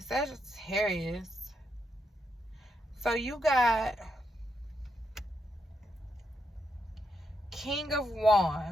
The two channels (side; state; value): both; normal; correlation 0.81